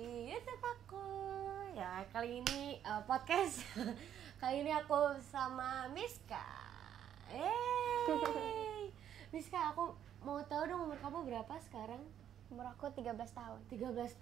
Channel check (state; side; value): quieter; left; 10.0 dB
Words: YouTube aku. Ya, kali ini podcast. Kali ini aku sama Miska. Miska, aku mau tahu dong umur kamu berapa sekarang? Umur aku 13 tahun. 13